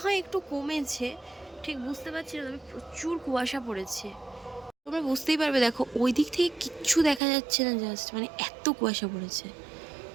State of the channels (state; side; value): drops out; left; at 7.2 s